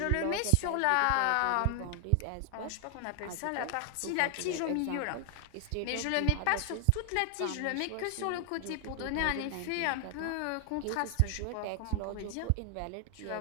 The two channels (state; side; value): different; both; correlation 0.00